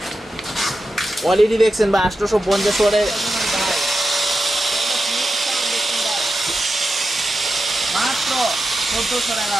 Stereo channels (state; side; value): normal; both; correlation 0.90